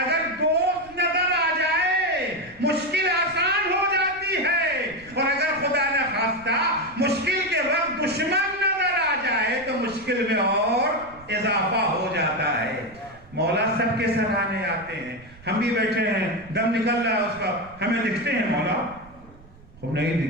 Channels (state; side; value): noise; right; rumble, 24 dB below the sound